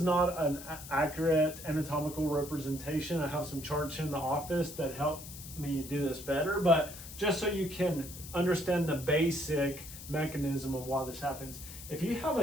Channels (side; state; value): left; noise; hiss, 13 dB below the sound